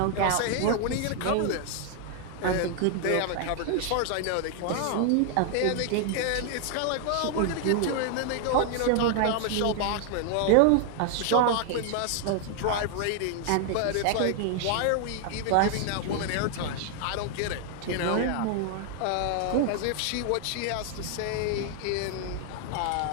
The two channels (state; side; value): different; both; correlation 0.00